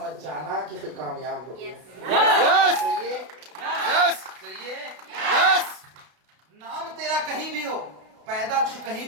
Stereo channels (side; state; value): left; late; 32 ms